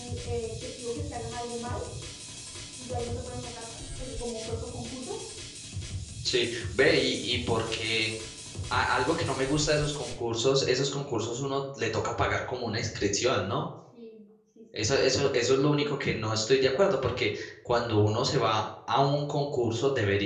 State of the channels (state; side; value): identical; both; correlation 1.00